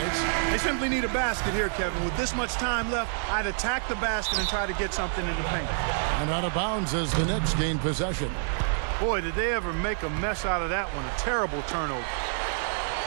They simply need a basket here, Kevin. With this much time left, I'd attack the basket and try to get something in the paint. And out of bounds as the Knicks gain possession. Boy, did they ever make a mess out of that one. A terrible turnover.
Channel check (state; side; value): silent; left; digital silence